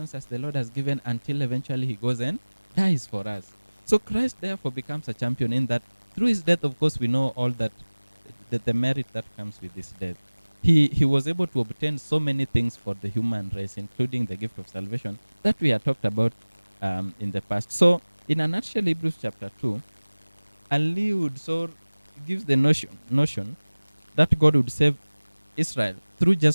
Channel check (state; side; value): inverted; both; correlation -1.00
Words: as the Lord has given, until eventually he goes and dies for us. So Christ therefore becomes a champion in that through his death, of course, we know all that, the merit that comes with his death. he was able to obtain so many things for the human race, including the gift of salvation that we had talked about in the past. So, in a nutshell, Hebrews chapter 2 alludes or gives the notion that God would save Israel through